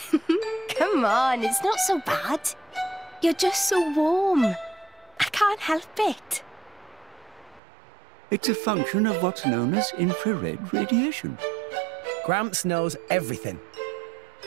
Come on, it's not so bad. You're just so warm. I can't help it. It's a function of what's known as infrared radiation. Gramps knows everything.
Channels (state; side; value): drops out; left; at 7.6 s